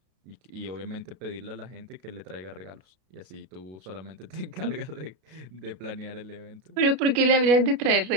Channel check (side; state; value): left; late; 32 ms